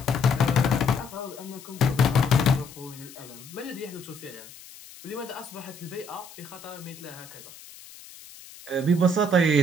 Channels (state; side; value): noise; left; hiss, 18 dB below the sound